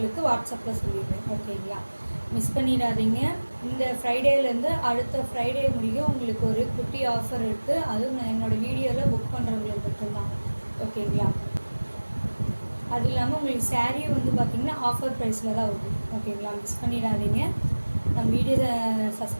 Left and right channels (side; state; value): both; inverted; correlation -1.00